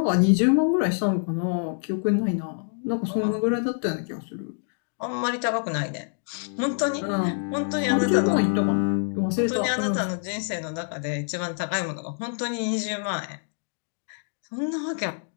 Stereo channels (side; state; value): right; silent; digital silence